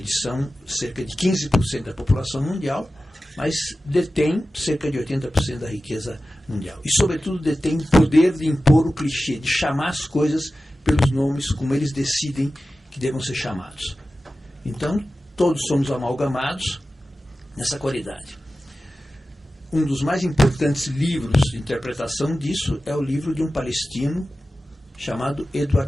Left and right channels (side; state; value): both; normal; correlation 0.94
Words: são cerca de 15% da população mundial, mas detêm cerca de 80% da riqueza mundial. E, sobretudo, detêm o poder de impor o clichê, de chamar as coisas pelos nomes como eles decidem que devam ser chamados. Então, todos somos amalgamados nessa qualidade. Um dos mais importantes livros de interpretação disso é o livro de um palestino chamado